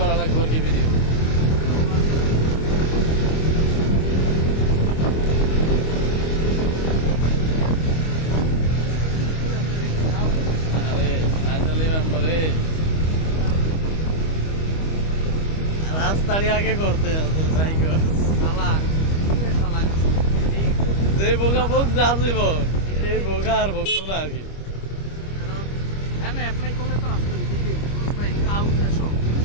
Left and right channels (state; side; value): late; right; 25 ms